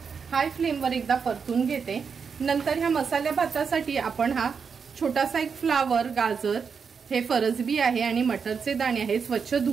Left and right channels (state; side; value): quieter; left; 6.0 dB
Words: हाय फ्लेमवर एकदा परतून घेते। नंतर ह्या मसाल्या भातासाठी आपण हा छोटासा एक फ्लावर, गाजर, हे फरसबी आहे आणि मटरचे दाणे आहे, स्वच्छ